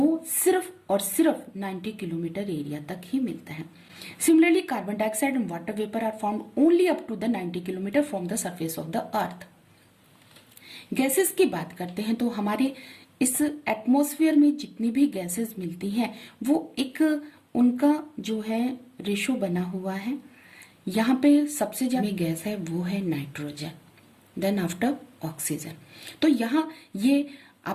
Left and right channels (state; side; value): identical; both; correlation 1.00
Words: सिर्फ और सिर्फ 90 किलोमीटर एरिया तक ही मिलता है। Similarly carbon dioxide and water vapour are found only up to the 90 kilometre from the surface of the earth. Gases की बात करते हैं तो हमारे इस एटमॉस्फेयर में जितनी भी गैसेस मिलती हैं वो एक उनका जो है रेशो बना हुआ है। यहाँ पे सबसे ज्यादा गैस है वो है नाइट्रोजन, देन आफ्टर ऑक्सीजन। तो यहाँ ये